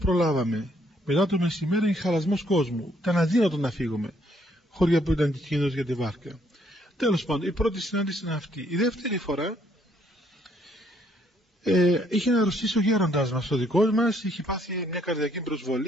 Μετά το μεσημέρι είναι χαλασμός κόσμου. Ήταν αδύνατο να φύγουμε. Χώρια που ήταν κίνδυνος για τη βάρκα. Τέλος πάντων, η πρώτη συνάντηση είναι αυτή. Η δεύτερη φορά είχε να αρρωστήσει ο γέροντας μας, ο δικός μας, είχε πάθει μια καρδιακή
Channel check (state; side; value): normal; both; correlation 0.68